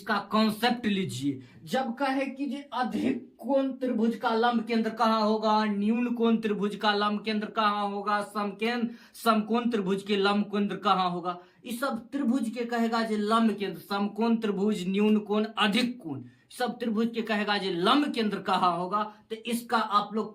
कॉन्सेप्ट लीजिए। जब कहे कि जी अधिक कोण त्रिभुज का लंब केंद्र कहाँ होगा, न्यून कोण त्रिभुज का लंब केंद्र कहाँ होगा, समकोण त्रिभुज के लंब केंद्र कहाँ होगा, इस सब त्रिभुज के कहेगा जी लंब केंद्र। समकोण त्रिभुज, न्यून कोण, अधिक कोण, सब त्रिभुज के कहेगा जी लंब केंद्र कहाँ होगा। तो इसका आप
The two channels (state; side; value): identical; both; correlation 1.00